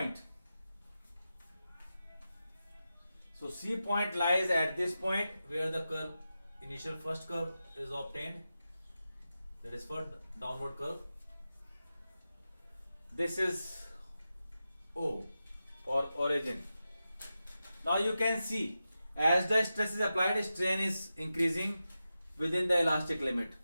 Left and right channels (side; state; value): both; inverted; correlation -0.92